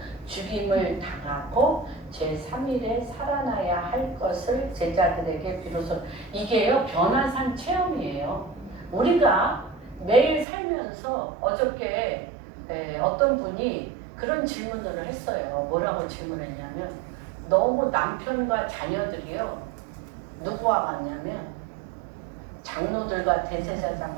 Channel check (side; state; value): left; drops out; at 10.5 s